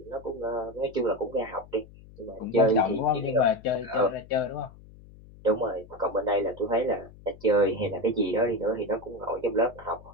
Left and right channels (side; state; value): left; noise; hum, 21 dB below the sound